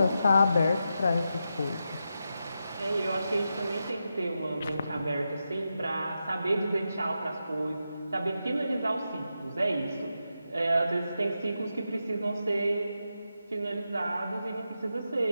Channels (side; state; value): both; inverted; correlation -0.87